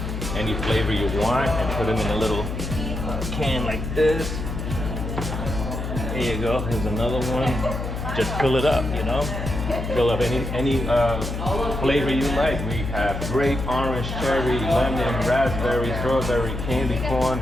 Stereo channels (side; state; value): left; noise; hum, 5 dB below the sound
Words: any flavor you want and put them in a little can like this. There you go. Here's another one. Just fill it up, you know. Fill up any flavor you like. We have grape, orange, cherry, lemon, raspberry, strawberry, candy corn,